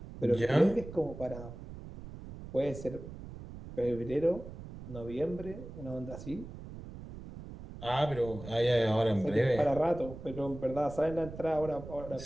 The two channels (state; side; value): noise; right; rumble, 13 dB below the sound